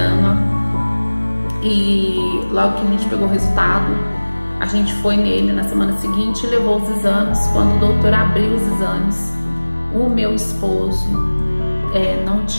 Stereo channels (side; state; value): both; inverted; correlation -1.00